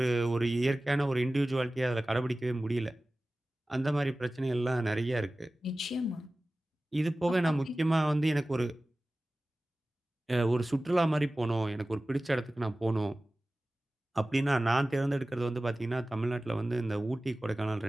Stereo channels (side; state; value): both; normal; correlation 0.97